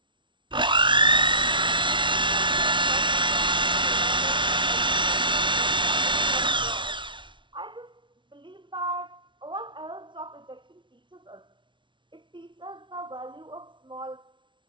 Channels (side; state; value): left; late; 0.24 ms